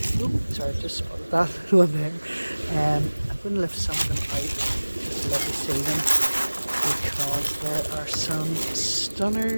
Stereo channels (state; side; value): inverted; both; correlation -1.00